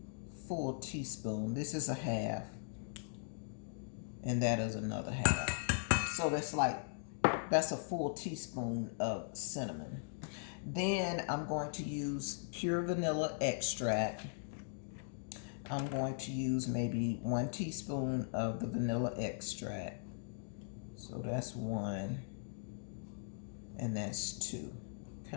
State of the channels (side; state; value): right; silent; digital silence